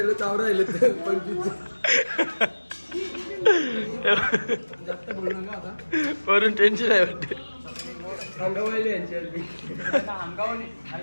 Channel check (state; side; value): inverted; both; correlation -1.00